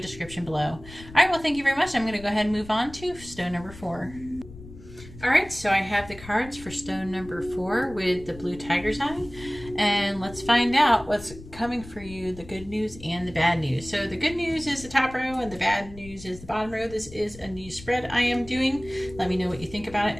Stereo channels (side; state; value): left; noise; rumble, 17 dB below the sound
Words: below. All right, well, thank you very much. I'm going to go ahead and move on to stone number 4. Alright, so I have the cards for stone number 4 with the blue tiger's eye. And let's find out what's coming for you, the good news and the bad news. So the good news is the top row and the bad news is the bottom row. This is a new spread I am doing. Let me know what you think about